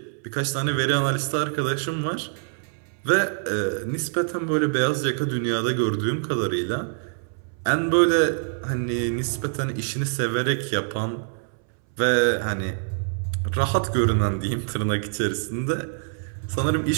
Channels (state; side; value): silent; left; 62 dB below the other